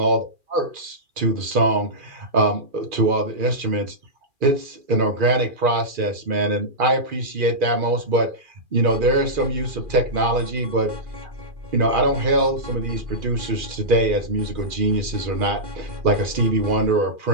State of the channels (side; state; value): left; late; 2.4 ms